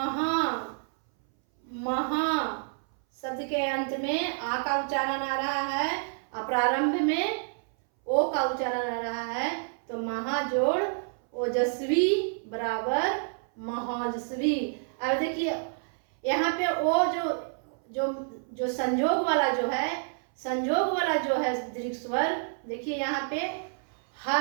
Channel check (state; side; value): silent; left; 59 dB below the other